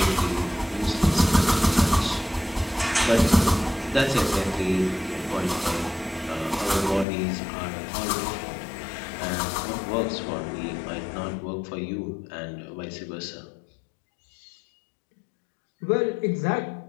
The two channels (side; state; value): right; drops out; at 7.1 s